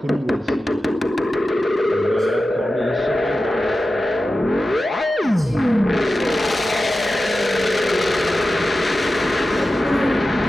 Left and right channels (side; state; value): both; normal; correlation 0.93